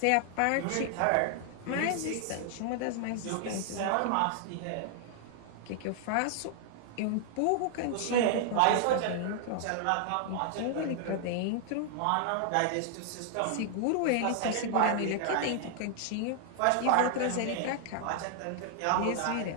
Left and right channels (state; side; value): different; both; correlation 0.00